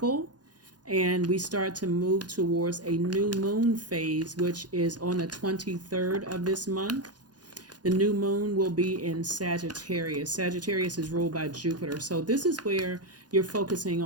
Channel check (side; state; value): left; late; 0.69 ms